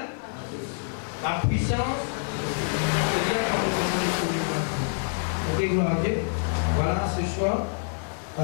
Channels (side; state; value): right; silent; digital silence